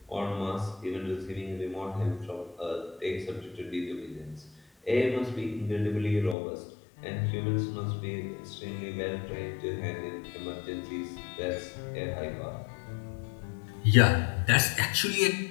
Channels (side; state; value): right; drops out; at 6.4 s